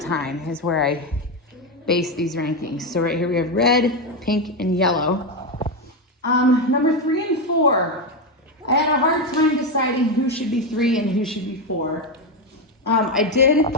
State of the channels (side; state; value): both; normal; correlation 0.10